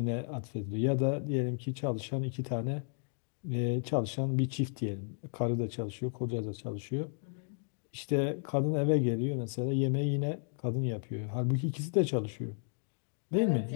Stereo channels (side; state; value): right; silent; 55 dB below the other